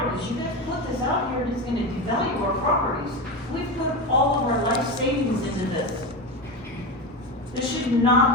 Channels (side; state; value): both; normal; correlation 0.19